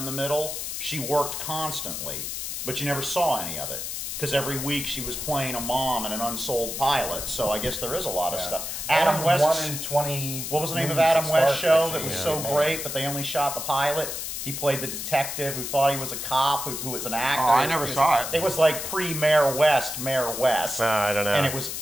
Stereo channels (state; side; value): noise; left; hiss, 5 dB below the sound